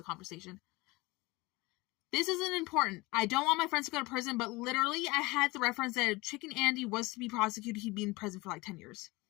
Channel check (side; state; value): right; quieter; 22.9 dB